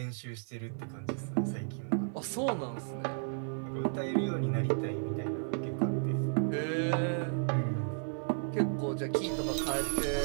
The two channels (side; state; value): left; silent; 55 dB below the other